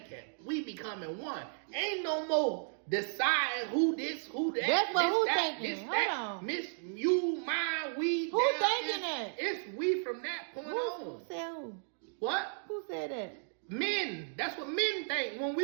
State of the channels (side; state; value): left; silent; digital silence